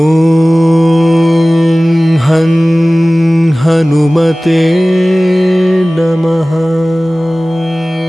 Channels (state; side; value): normal; both; correlation 0.98